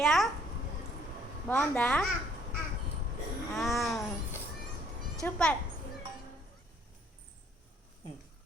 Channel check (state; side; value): normal; both; correlation 0.62